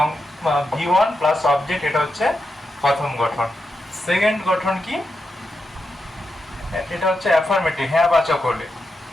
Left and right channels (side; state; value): both; normal; correlation 0.87